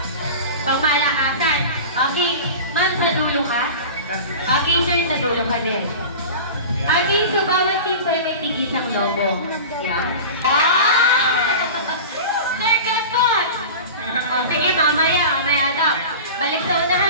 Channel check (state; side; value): inverted; both; correlation -0.33